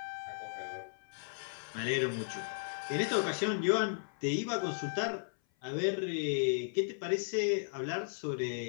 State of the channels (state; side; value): silent; right; 54 dB below the other